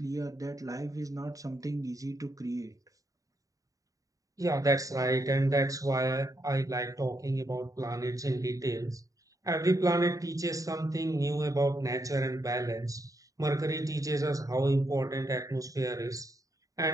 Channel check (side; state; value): left; late; 0.16 ms